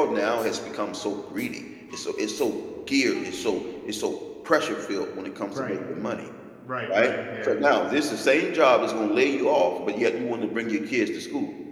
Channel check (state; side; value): identical; both; correlation 1.00